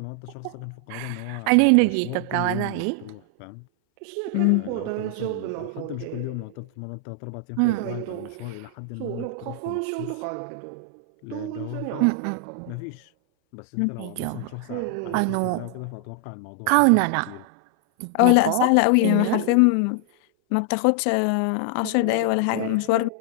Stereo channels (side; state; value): both; different; correlation 0.00